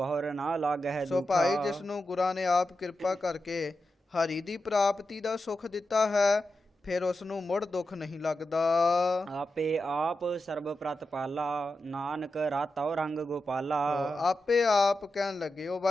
ਨਾ ਲਾਗਹਿ ਸੋ ਦੁਖਾ। ਭਾਈ ਜਿਸ ਨੂੰ ਗੁਰਾਂ ਨੇ ਆਪ ਕਿਰਪਾ ਕਰਕੇ ਹਰੀ ਦੀ ਪ੍ਰਾਪਤੀ ਦਾ ਸੁਖ ਦਿੱਤਾ ਹੈ, ਫਿਰ ਉਸ ਨੂੰ ਮੁੜ ਦੁੱਖ ਨਹੀਂ ਲੱਗਦਾ। ਆਪੇ ਆਪ ਸਰਬ ਪ੍ਰਤਪਾਲਾ ਨਾਨਕ ਰਾਤਉ ਰੰਗ ਗੋਪਾਲਾ। ਆਪੇ ਆਪ ਕਹਿਣ ਲੱਗੇ ਉਹ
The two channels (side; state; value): both; normal; correlation 0.90